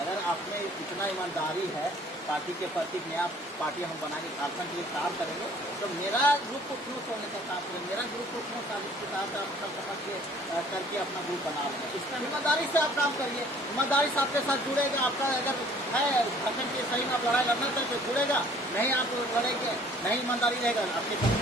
आप में इतना ईमानदारी है पार्टी के प्रति, नया पार्टी हम बनाएंगे, झारखंड के लिए काम करेंगे, तो मेरा ग्रुप को क्यों छोड़ने का काम करें? मेरा ग्रुप को क्यों साजिश के साथ आप सब समझ के करके अपना ग्रुप बना लेंगे? इसमें ईमानदारी से आप काम करिए। ईमानदारी से आपके साथ जुड़ेगा। आपका अगर है झारखंड के सही में आप लड़ाई लड़ना चाहिए तो जुड़ेगा, नहीं आप लड़ेंगे, नहीं ईमानदारी रहेगा, आपके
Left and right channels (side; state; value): both; normal; correlation 0.55